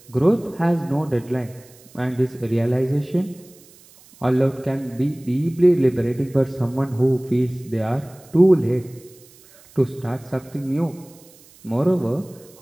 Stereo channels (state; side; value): noise; right; hiss, 25 dB below the sound